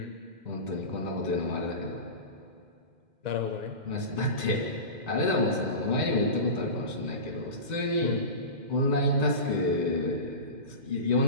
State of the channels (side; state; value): left; late; 2.1 ms